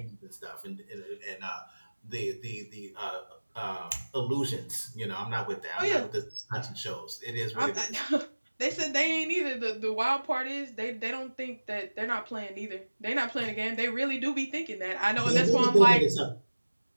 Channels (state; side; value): inverted; both; correlation -1.00